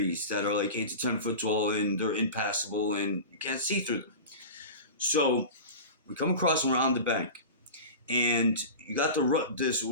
that are like 8 to 10 foot tall, and they're impassable, and you can't see through them. So we come across and we're on the bank. And you got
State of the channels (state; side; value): inverted; both; correlation -0.31